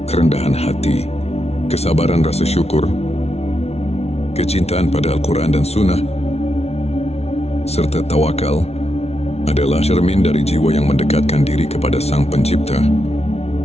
kerendahan hati, kesabaran rasa syukur, kecintaan pada Al-Quran dan Sunnah, serta tawakal adalah cermin dari jiwa yang mendekatkan diri kepada Sang Pencipta.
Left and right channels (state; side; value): late; right; 0.31 ms